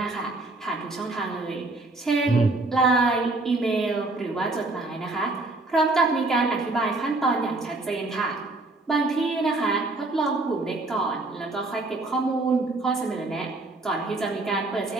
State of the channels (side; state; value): left; quieter; 3.1 dB